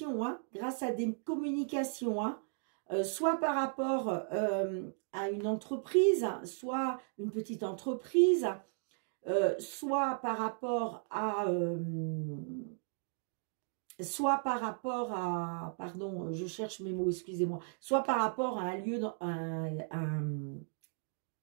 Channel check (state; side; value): silent; left; 54 dB below the other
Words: hein, soit par rapport à une entreprise, soit une petite entreprise, soit par rapport à... pardon, je cherche mes mots, excusez-moi, soit par rapport à un